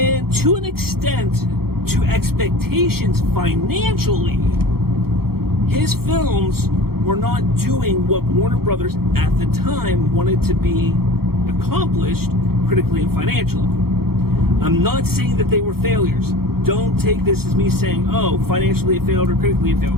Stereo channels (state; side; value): late; left; 0.94 ms